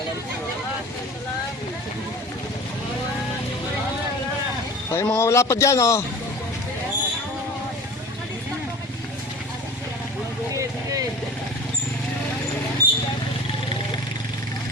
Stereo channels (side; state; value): both; normal; correlation 0.39